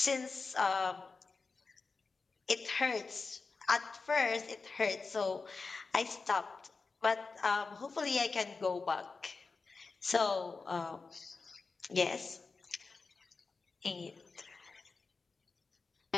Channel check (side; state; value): right; quieter; 4.3 dB